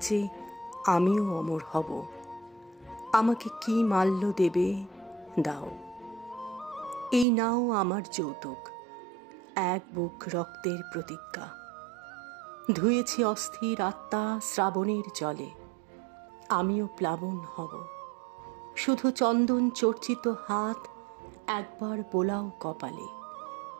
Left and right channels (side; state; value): left; drops out; at 7.2 s